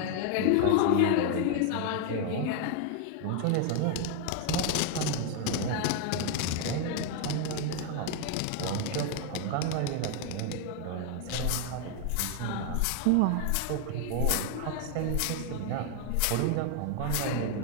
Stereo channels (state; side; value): different; both; correlation 0.01